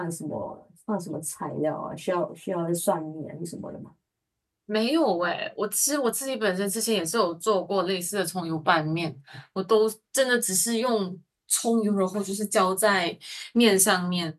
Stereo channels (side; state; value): both; identical; correlation 1.00